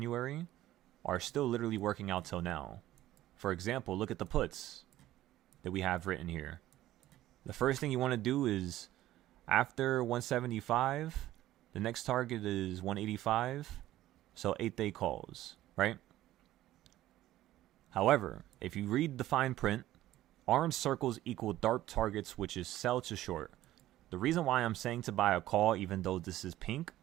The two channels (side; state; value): left; quieter; 14.6 dB